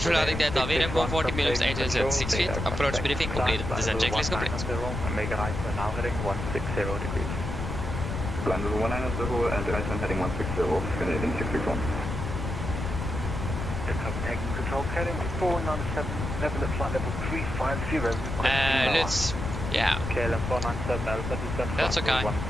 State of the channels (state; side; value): noise; left; rumble, 4 dB below the sound